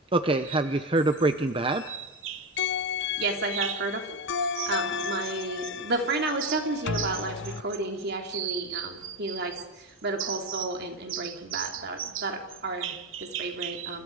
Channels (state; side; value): normal; both; correlation 0.17